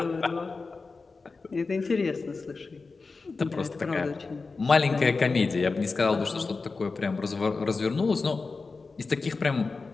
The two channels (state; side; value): quieter; right; 4.1 dB